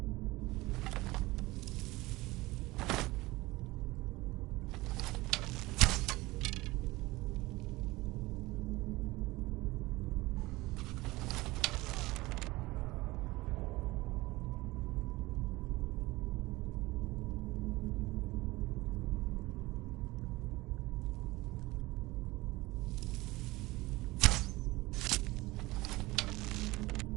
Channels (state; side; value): quieter; left; 20.4 dB